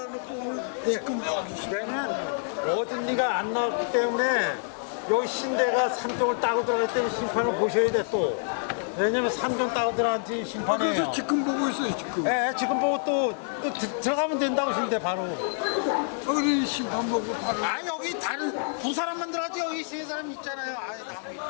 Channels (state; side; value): silent; right; digital silence